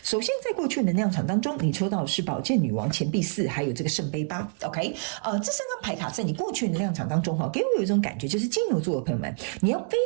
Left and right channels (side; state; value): left; silent; 60 dB below the other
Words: 首先，在过去的能量场当中，你抽到的是宝剑女王、钱币4，还有这个圣杯8。OK，这3张牌卡在你过去的能量场当中，给我有一种感觉，就是金牛座的朋友们，你要非